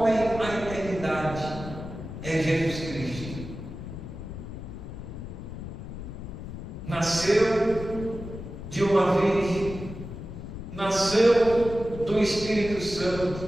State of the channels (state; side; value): noise; left; rumble, 10 dB below the sound